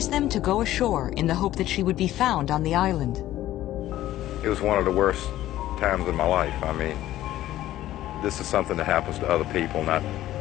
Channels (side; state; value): right; quieter; 14.1 dB